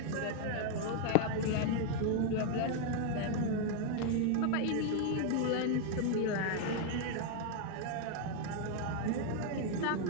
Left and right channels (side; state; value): both; different; correlation 0.00